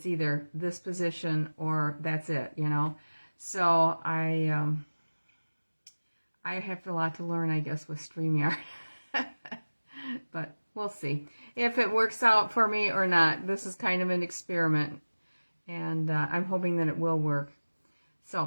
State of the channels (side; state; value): both; inverted; correlation -1.00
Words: either this position or that's it, you know. So I have a lot to learn, I guess, with StreamYard. But we'll see if it works out for me or not. This is kind of an experiment, and I'm hoping that it will work.